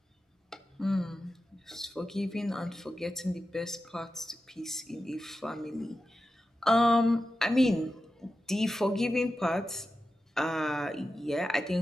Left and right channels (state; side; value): normal; both; correlation 0.92